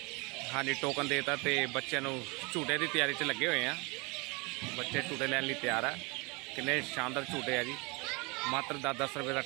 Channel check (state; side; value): quieter; left; 28.5 dB